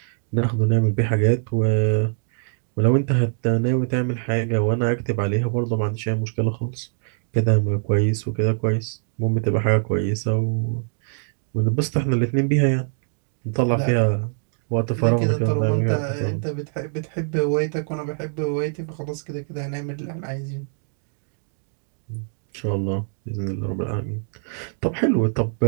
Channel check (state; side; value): silent; left; digital silence